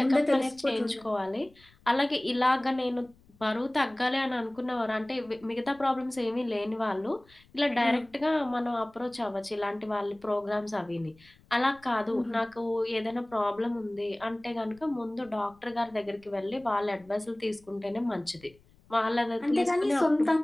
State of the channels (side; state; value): left; noise; rumble, 29 dB below the sound